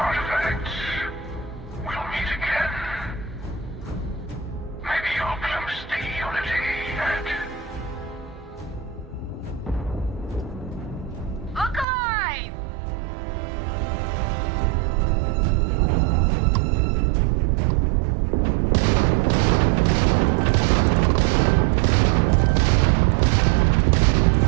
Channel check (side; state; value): left; drops out; at 11.9 s